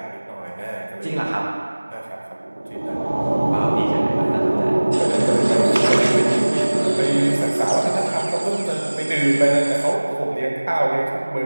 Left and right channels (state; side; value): inverted; both; correlation -1.00